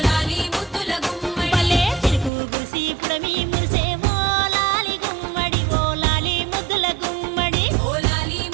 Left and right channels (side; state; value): left; drops out; at 2.3 s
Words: భలే చిరుకు గురిసి పుడమి మురిసేవో లాలి గుమ్మడి ఓ లాలి ముద్దుల గుమ్మడి